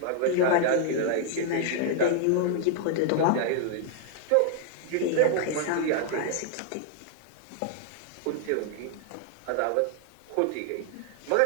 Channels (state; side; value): different; both; correlation 0.00